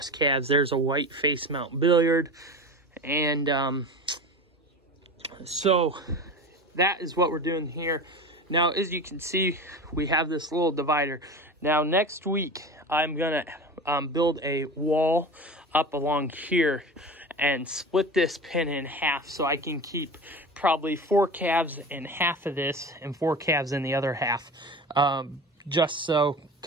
calves. There's a white face mount billiard, and so that is what we're doing here. Now, as you can see, we have this little divider. Now next week I'm gonna build a wall up along here and split this pen in half so I can keep probably 4 calves in half of this and 4 calves in the other half. Just so,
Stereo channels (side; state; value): both; normal; correlation 0.31